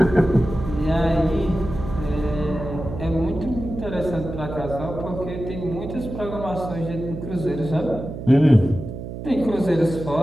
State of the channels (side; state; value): right; noise; hum, 8 dB below the sound